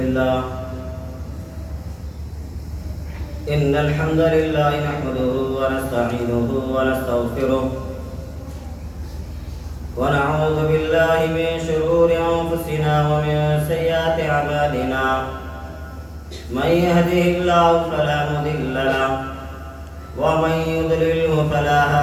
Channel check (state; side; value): identical; both; correlation 1.00